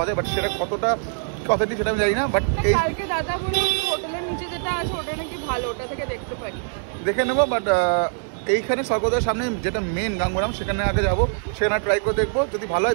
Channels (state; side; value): silent; left; 63 dB below the other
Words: যায়, বাট সেটা কতটা কথাটি সেটা আমি জানি না, বাট এই কালকে দাদা বলে হোটেলের নিচে যেটা আছে ওটা নাকি ভালো, ওটা থেকে দেখতে পারি। দেখে নেবো, বাট এইখানে স্বর্গদ্বারের সামনে যেটা মেন গাঙ্গুরাম, সেখানে আগে যাবো, সেখানে ট্রাই করে দেখবো, যদি ভালো